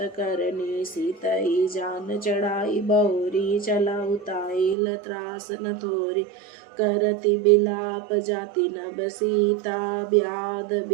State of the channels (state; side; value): drops out; left; at 4.8 s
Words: करनी। सीतई जान चढ़ाई बहुरी, चला उताई त्रास न थोरी। करती बिलाप जाति नभ सीता, व्याध